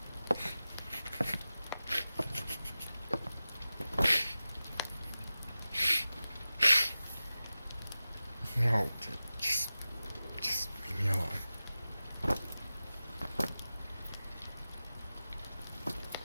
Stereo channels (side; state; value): both; inverted; correlation -0.95